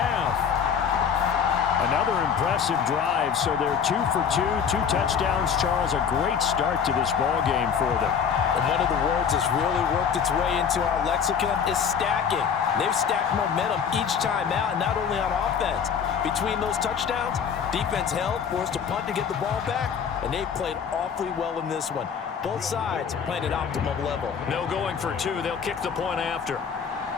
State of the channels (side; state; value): right; quieter; 7.2 dB